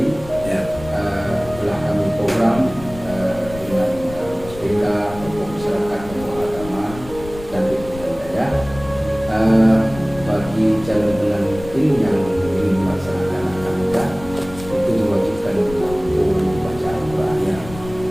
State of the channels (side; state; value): left; noise; rumble, 15 dB below the sound